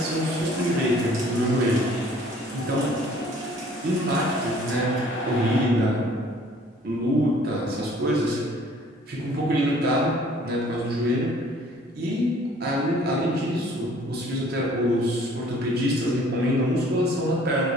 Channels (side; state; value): both; normal; correlation 0.55